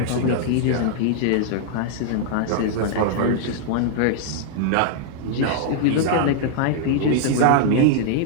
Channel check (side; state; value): both; different; correlation -0.01